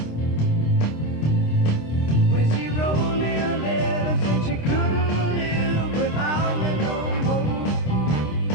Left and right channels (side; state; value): right; late; 26 ms